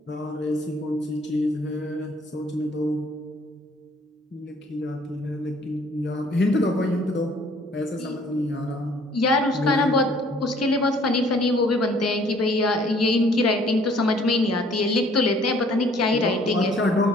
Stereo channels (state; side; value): normal; both; correlation 0.58